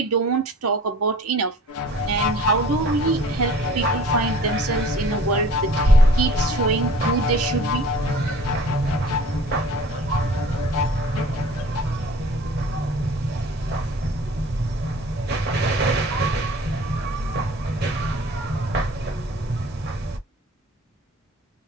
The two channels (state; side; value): normal; both; correlation 0.46